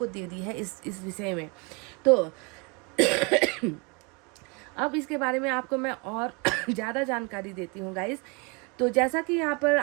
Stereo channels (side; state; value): left; quieter; 30.6 dB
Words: दे दी है इस विषय में। तो अब इसके बारे में आपको मैं और ज़्यादा जानकारी देती हूँ गाइस। तो जैसा कि यहाँ पर